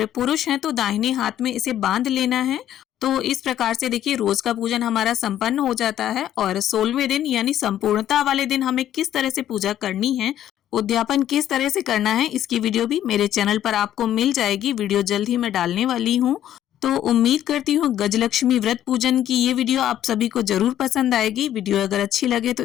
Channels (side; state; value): right; quieter; 11.5 dB